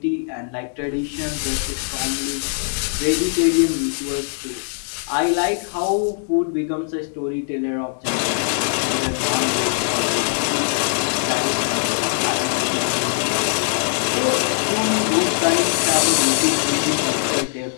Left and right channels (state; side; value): silent; right; 65 dB below the other